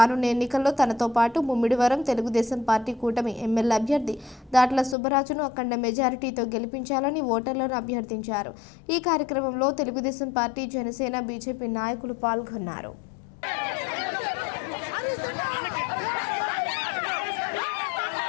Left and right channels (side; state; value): right; drops out; at 5.0 s